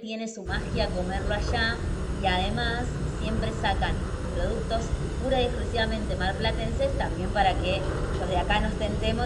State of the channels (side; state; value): both; identical; correlation 1.00